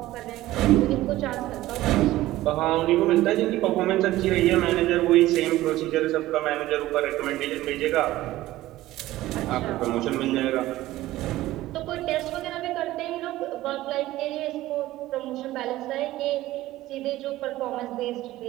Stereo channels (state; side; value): quieter; left; 16.1 dB